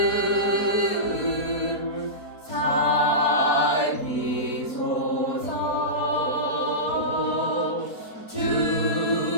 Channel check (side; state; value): right; late; 4.6 ms